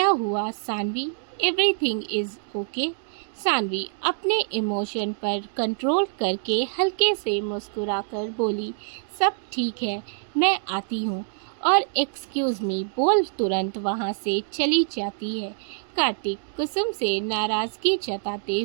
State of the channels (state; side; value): silent; left; digital silence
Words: हुआ Saanvi? Everything is okay? Saanvi अपने इमोशन पर कंट्रोल करके हल्के से मुस्कुराकर बोली, सब ठीक है, मैं आती हूँ। और एक्सक्यूज मी बोल तुरंत वहाँ से चली जाती है। कार्तिक कुसुम से नाराजगी जताते